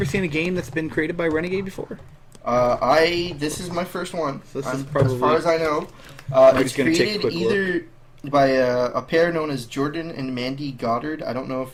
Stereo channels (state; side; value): identical; both; correlation 1.00